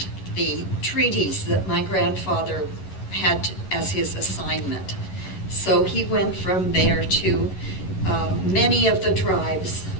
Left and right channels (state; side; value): late; right; 11 ms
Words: the treaties that my grandfather had as his assignment. So he went from there to many of the tribes,